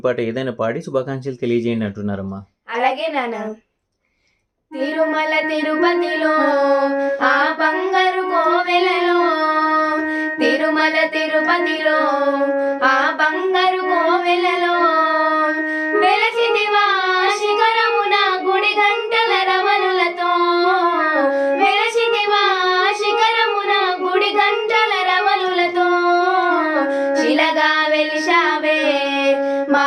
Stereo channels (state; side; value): identical; both; correlation 1.00